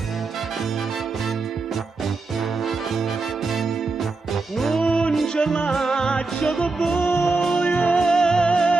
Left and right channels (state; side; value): quieter; left; 3.7 dB